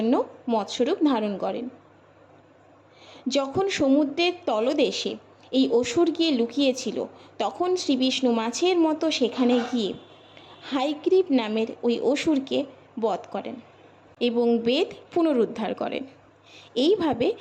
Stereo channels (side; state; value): both; identical; correlation 1.00